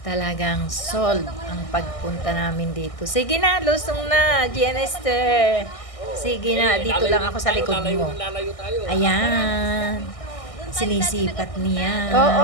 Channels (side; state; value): right; late; 1.6 ms